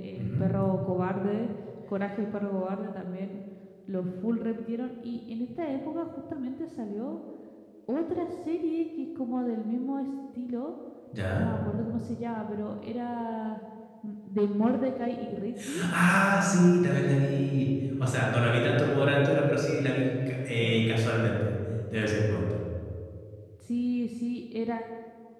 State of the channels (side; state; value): both; identical; correlation 1.00